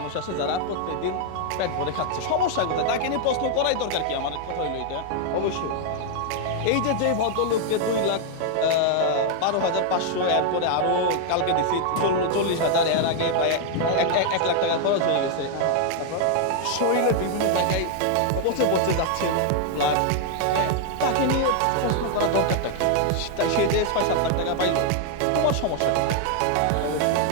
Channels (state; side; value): different; both; correlation 0.00